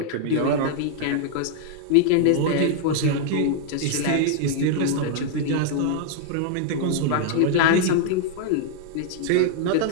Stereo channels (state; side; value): different; both; correlation -0.01